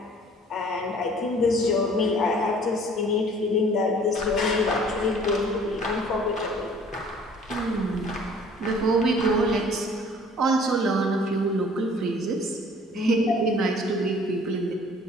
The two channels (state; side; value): normal; both; correlation 0.53